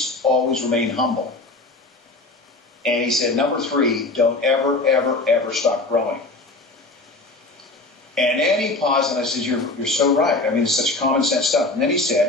remain humble. And he said, number three, don't ever stop growing. And then he paused, and I said, you're so right. I mean, it's such common sense stuff. And then he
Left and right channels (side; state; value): right; quieter; 3.1 dB